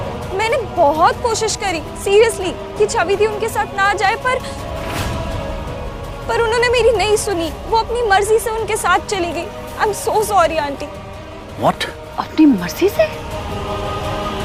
मैंने बहुत कोशिश करी सीरियसली कि छवि थी उनके साथ ना जाए, पर उन्होंने मेरी नहीं सुनी। वो अपनी मर्जी से उनके साथ चली गई। I am so sorry aunty. What? अपनी मर्जी से?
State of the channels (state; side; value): identical; both; correlation 1.00